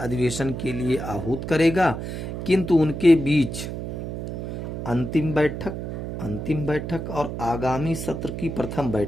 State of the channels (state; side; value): noise; right; hum, 5 dB below the sound